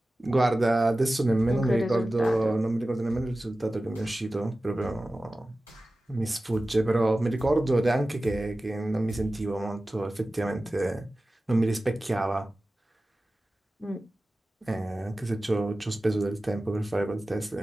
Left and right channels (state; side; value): normal; both; correlation 0.96